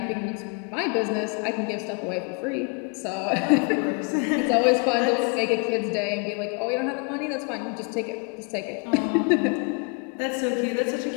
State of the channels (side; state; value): right; quieter; 35.2 dB